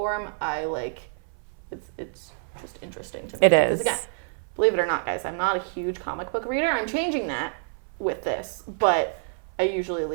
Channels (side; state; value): left; silent; 56 dB below the other